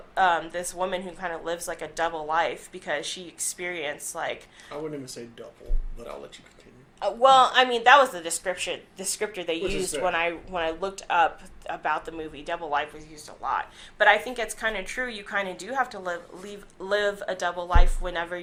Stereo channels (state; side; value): identical; both; correlation 1.00